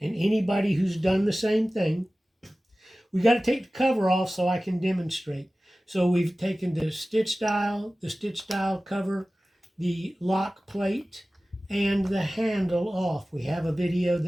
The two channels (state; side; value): normal; both; correlation 0.97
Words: and anybody who's done the same thing, we got to take the cover off so I can demonstrate. So we've taken the stitch dial cover, the lock plate, and the handle off. We have a video